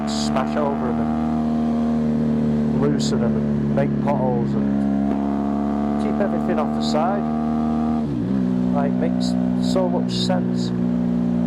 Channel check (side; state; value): both; identical; correlation 1.00